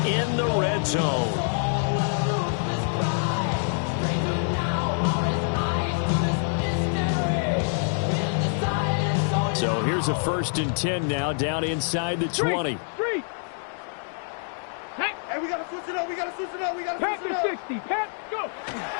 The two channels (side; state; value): right; silent; digital silence